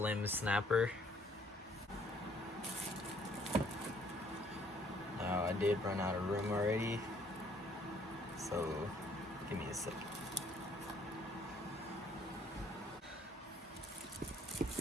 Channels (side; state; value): both; normal; correlation 0.64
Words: Snapper. Now I did run out of room already, so give me a second.